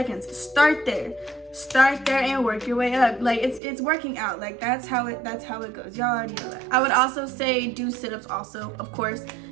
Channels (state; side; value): drops out; left; at 3.6 s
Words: start there. Start there and work your way up. Like, it's working out. Like, that's how it goes. Y'all already know that. I would also say do sit-ups also, of course.